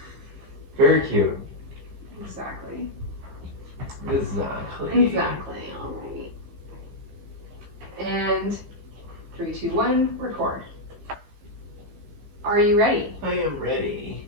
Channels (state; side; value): late; left; 15 ms